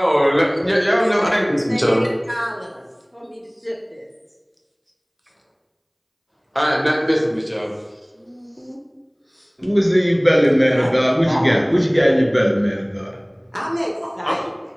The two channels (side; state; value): both; identical; correlation 1.00